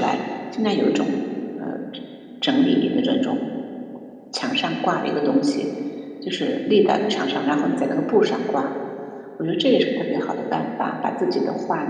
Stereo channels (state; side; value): identical; both; correlation 1.00